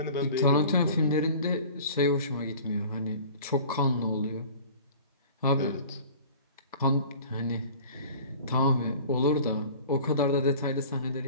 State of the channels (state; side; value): inverted; both; correlation -0.43